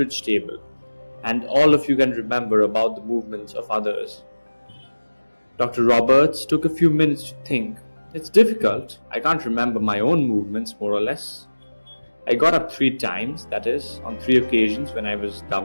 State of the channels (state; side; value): inverted; both; correlation -1.00